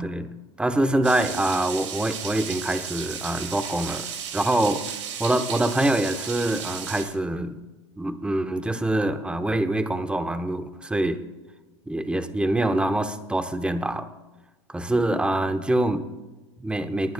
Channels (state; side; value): normal; both; correlation 0.85